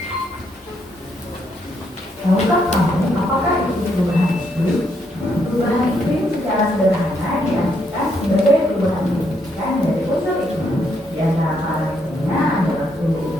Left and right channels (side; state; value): both; normal; correlation 0.75